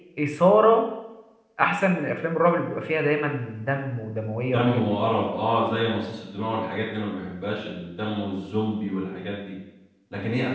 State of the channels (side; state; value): both; identical; correlation 1.00